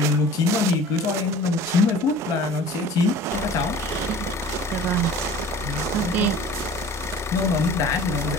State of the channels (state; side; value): normal; both; correlation 0.44